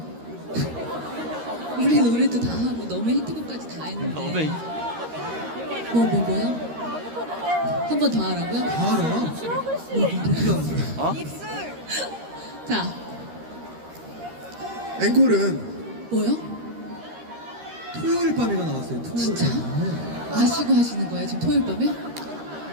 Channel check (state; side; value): late; left; 13 ms